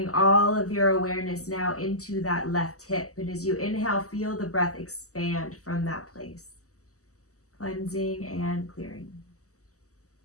all of your awareness now into that left hip. And as you inhale, feel the breath expand from that place, cleansing and clearing.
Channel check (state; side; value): late; right; 0.66 ms